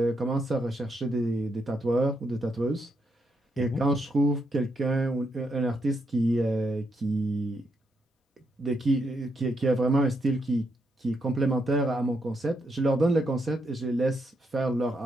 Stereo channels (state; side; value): normal; both; correlation 0.80